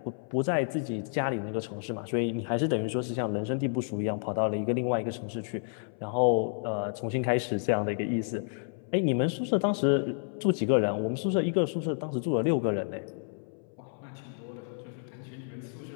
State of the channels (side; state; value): right; silent; 58 dB below the other